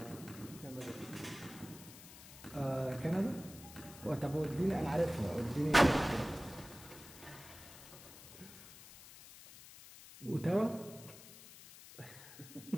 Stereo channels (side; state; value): left; noise; hiss, 17 dB below the sound